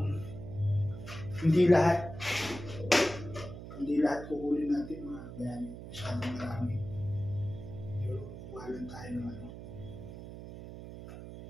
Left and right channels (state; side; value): noise; right; hum, 11 dB below the sound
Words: hindi lahat kukunin natin mga kabayani. Masyadong marami. Kukuha lang tayo ng ano.